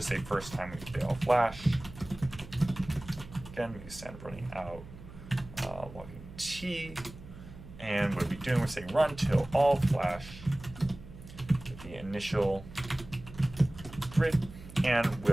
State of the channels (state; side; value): noise; right; hum, 16 dB below the sound